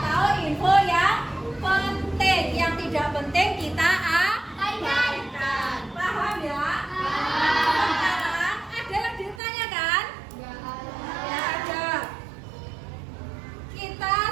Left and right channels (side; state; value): left; drops out; at 9.4 s